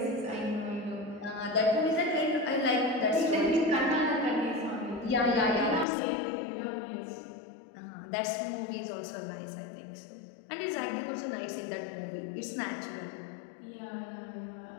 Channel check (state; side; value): drops out; right; at 5.9 s